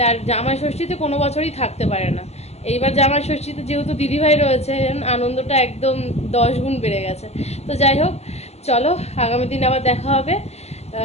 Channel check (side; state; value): right; late; 0.31 ms